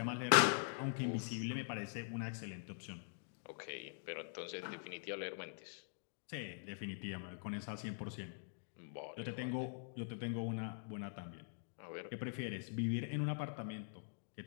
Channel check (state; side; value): silent; right; digital silence